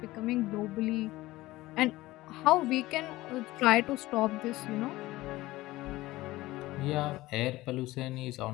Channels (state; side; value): quieter; right; 18.2 dB